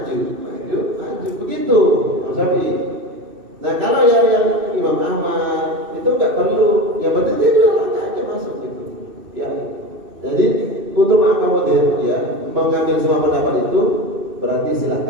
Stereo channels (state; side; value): late; left; 2.6 ms